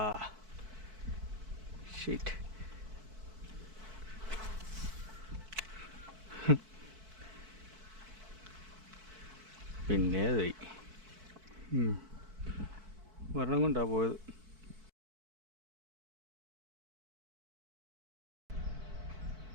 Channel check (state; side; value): late; left; 4.6 ms